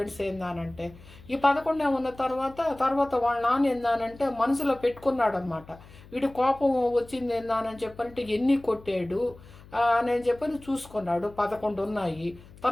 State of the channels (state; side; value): noise; left; hum, 21 dB below the sound